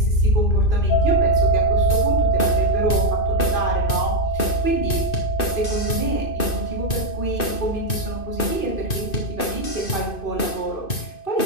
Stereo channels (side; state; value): right; late; 2.5 ms